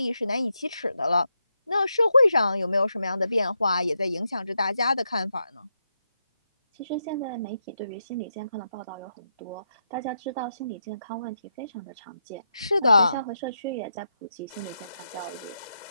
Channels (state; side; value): inverted; both; correlation -0.84